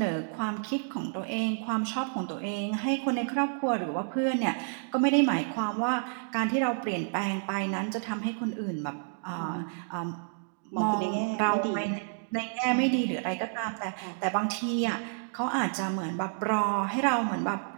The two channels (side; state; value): left; silent; digital silence